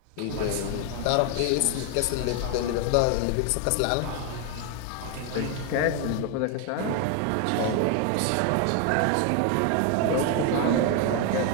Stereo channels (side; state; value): both; different; correlation 0.01